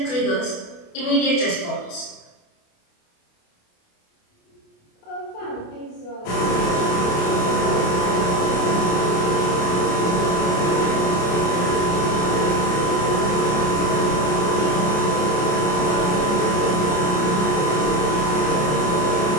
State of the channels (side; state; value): right; late; 28 ms